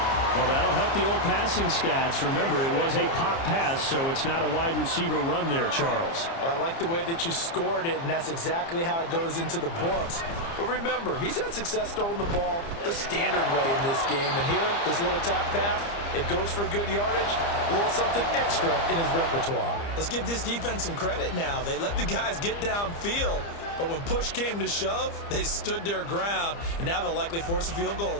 Well, that'll help the old passing stats. Remember, it was a pop pass, so it's not a wide receiver run there, Charles. Well, I like the way that you scored it, and that's exactly how it goes into the books. But remember, he's had success throwing the ball the standard way in this game. And here, this little tap pass, it goes for good yardage, a little something extra in his repertoire. Let's give this defense some credit now. They let the guys get downfield, but when push came to shove, they stood their ground, and now they'll likely force a field goal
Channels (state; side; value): late; right; 30 ms